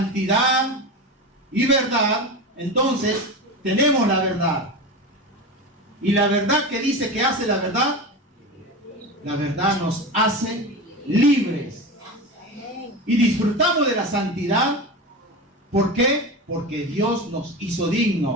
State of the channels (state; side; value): normal; both; correlation 0.25